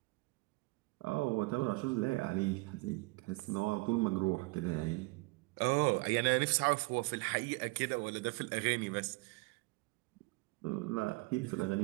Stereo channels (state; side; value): quieter; left; 25.4 dB